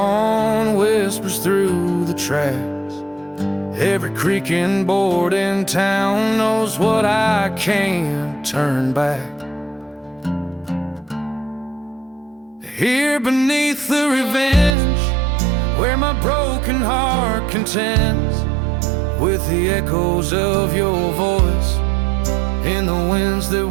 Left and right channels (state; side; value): drops out; left; at 14.8 s